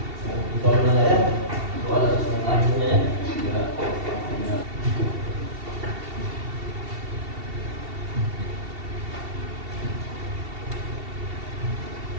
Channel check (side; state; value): left; late; 2.7 ms